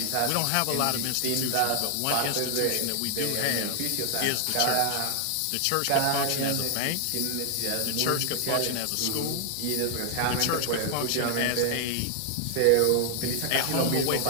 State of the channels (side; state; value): both; different; correlation 0.00